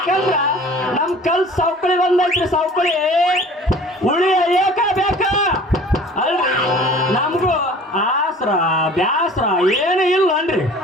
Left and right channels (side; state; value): both; normal; correlation 0.46